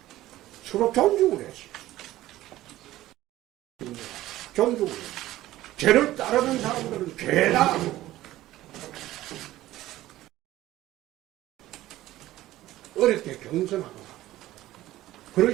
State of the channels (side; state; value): left; quieter; 15.4 dB